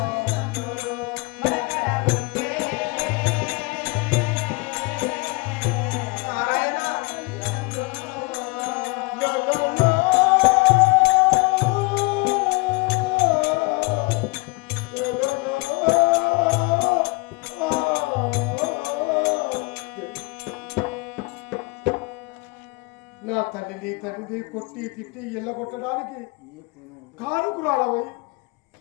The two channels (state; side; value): quieter; right; 26.6 dB